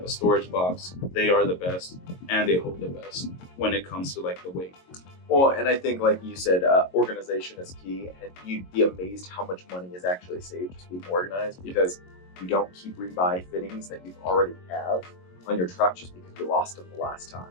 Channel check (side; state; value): right; late; 22 ms